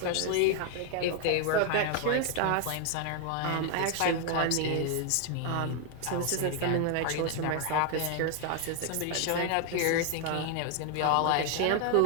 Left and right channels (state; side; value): different; both; correlation 0.00